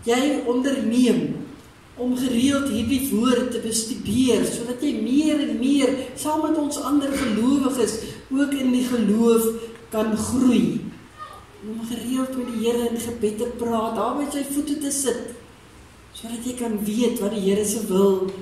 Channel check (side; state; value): both; identical; correlation 1.00